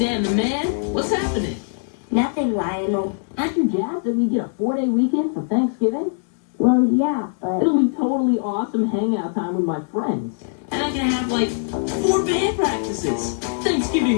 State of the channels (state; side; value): silent; right; 64 dB below the other